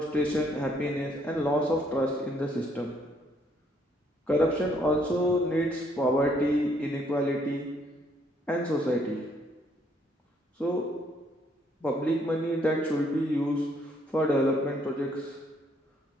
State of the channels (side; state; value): both; normal; correlation 0.68